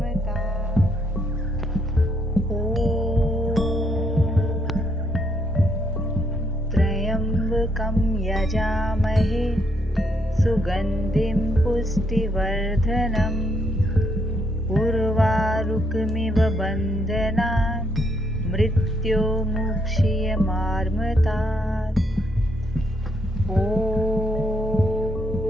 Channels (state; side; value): normal; both; correlation 0.74